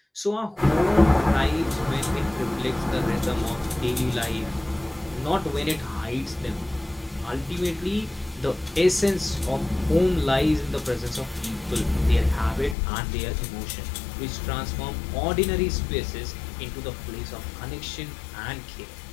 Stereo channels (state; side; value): drops out; right; at 12.8 s